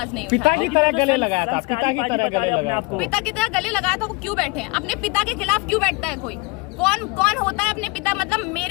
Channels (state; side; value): quieter; right; 26.0 dB